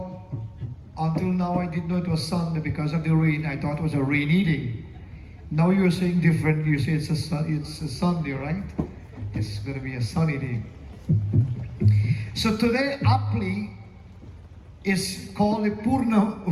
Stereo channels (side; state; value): both; identical; correlation 1.00